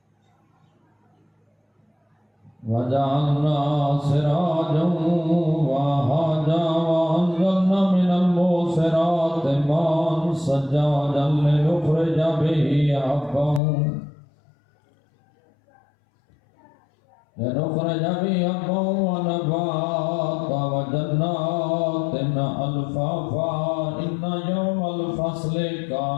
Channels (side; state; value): right; drops out; at 13.6 s